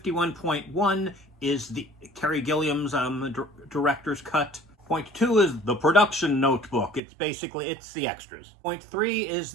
is the Terry Gilliam's director's cut. .2 is the production notebook. It's basically, it's the extras. .3 is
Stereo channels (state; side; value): drops out; left; at 7.0 s